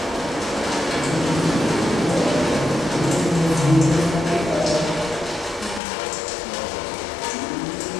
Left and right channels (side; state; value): right; drops out; at 5.8 s